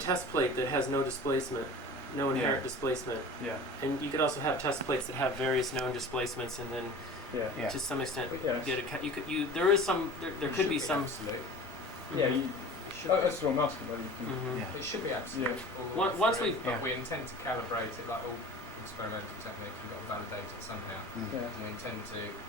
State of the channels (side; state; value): both; normal; correlation 0.39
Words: plate that has no displacement, no inherent displacement, Yeah. and you could also have test plates that have various known displacements, and then Yeah. to some extent Yeah. get there is some there could be some. Absolute. Yeah. Mhm. That's what I'm asking. Whether you can. Mhm. It should be absolute. Yeah. all the way Once through, we've- but we intend to calibrate it like all experimental technique. We've got to validate it somehow. Yeah. And we intend to.